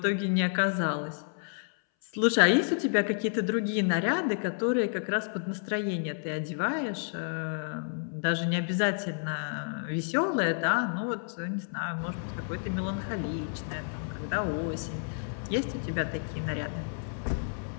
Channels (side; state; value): right; silent; 58 dB below the other